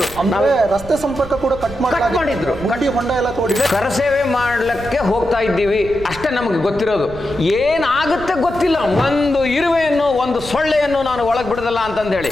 ರಸ್ತೆ ಸಂಪರ್ಕ ಕೂಡ ಕಟ್ ಮಾಡಿದ್ರು, ಗಡಿ ಹೊಂಡ ಎಲ್ಲ ತೋಡಿ. ಕರಸೇವೆ ಮಾಡ್ಲಿಕ್ಕೆ ಹೋಗ್ತಾ ಇದ್ದೀವಿ ಅಷ್ಟೇ ನಮಗೆ ಗೊತ್ತಿರೋದು. ಏನಾಗುತ್ತೆ ಗೊತ್ತಿಲ್ಲ. ಒಂದು ಇರುವೆಯನ್ನು, ಒಂದು ಸೊಳ್ಳೆಯನ್ನು ನಾನು ಒಳಗೆ ಬಿಡದಲ್ಲ ಅಂತಂದು ಹೇಳಿ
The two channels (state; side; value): noise; right; rumble, 15 dB below the sound